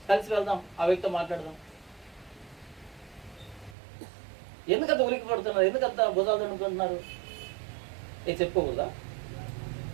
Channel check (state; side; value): drops out; left; at 3.8 s